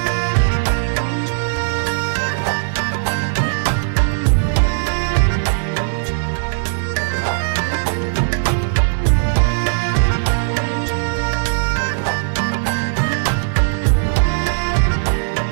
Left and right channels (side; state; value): left; silent; digital silence